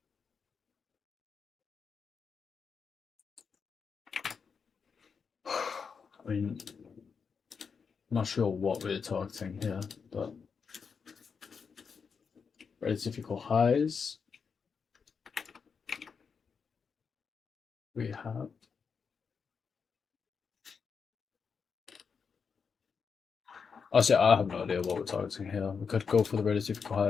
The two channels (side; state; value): right; quieter; 5.8 dB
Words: I mean, I'm not sure what we're targeting here, but relative equal highs. We have honestly, I have no idea what we're targeting here. We could go for the relative equal